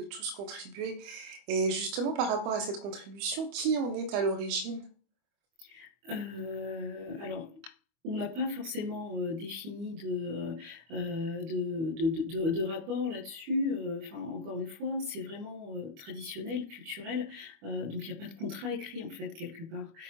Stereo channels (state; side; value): late; left; 25 ms